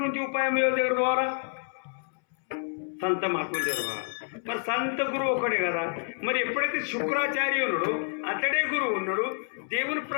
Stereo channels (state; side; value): silent; right; 59 dB below the other